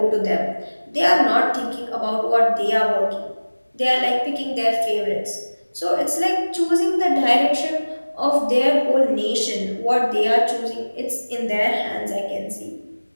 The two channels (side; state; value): both; inverted; correlation -1.00